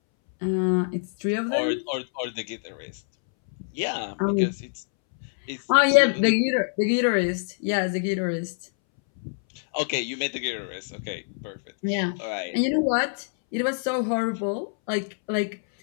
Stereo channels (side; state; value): right; silent; 61 dB below the other